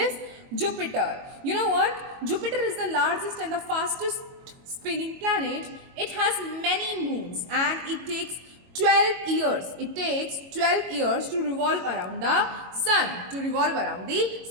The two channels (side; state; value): left; late; 22 ms